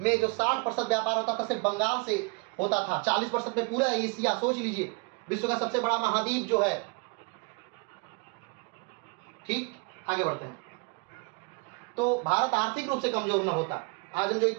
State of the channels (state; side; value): quieter; left; 31.2 dB